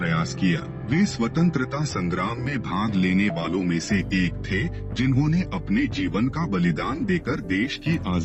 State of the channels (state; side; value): identical; both; correlation 1.00